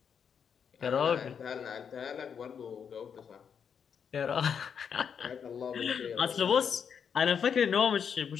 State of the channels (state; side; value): quieter; right; 7.2 dB